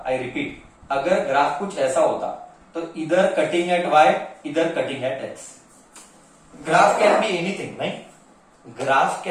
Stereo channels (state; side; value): identical; both; correlation 1.00